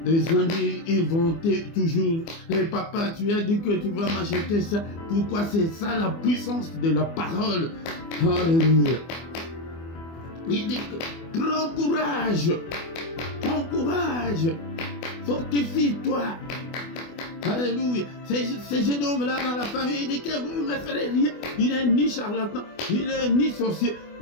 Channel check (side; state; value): right; late; 24 ms